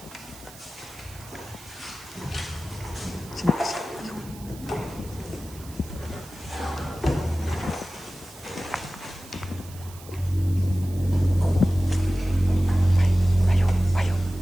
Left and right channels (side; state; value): right; noise; hiss, 19 dB below the sound